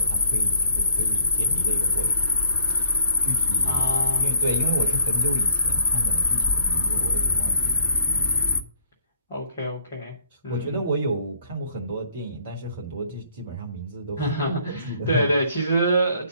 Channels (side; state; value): both; inverted; correlation -0.55